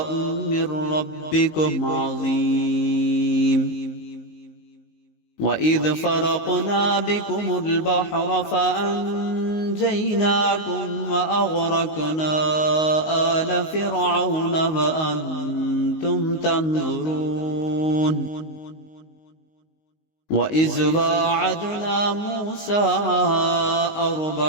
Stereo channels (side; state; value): right; late; 19 ms